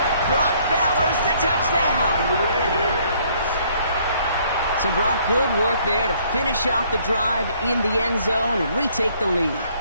Brock Bowers the touchdown. So Brock, good work there to finish off the drive in the end zone and retake the lead.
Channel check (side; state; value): both; inverted; correlation -0.63